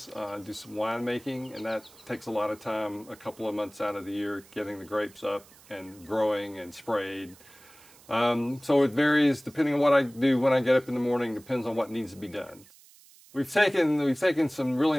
Do some winemaking, and that takes a lot of time, a couple of months out of the year, getting the grapes up and growing and sprayed. So it varies depending on what I do when I get up in the morning, depends on what needs to be done. We've taken some really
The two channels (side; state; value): right; noise; hiss, 25 dB below the sound